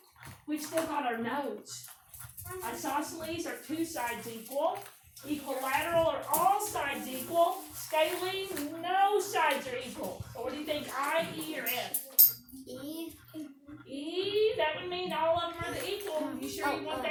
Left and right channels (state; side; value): identical; both; correlation 1.00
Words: we've still got our notes. Isosceles are 2 sides equal. Equilateral are all sides equal. Scalene, no sides are equal. So what do you think, I, E, or F? E. E, that would mean all of them are equal. You sure you want